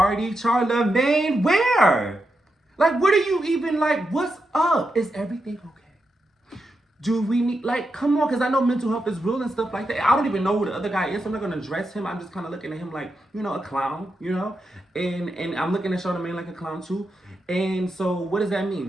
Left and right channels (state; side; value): normal; both; correlation 0.86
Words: Charlemagne. Where? Like, what are you even, like, what's up? Is everything okay? Do we need, like, come on, because I know mental health is real and stuff like that. I don't even know who the other guy is. I'm not going to address him. I'm just kind of looking at him like, you know, a clown, you know? And I'm looking at Charlemagne like a clown too. And so what does that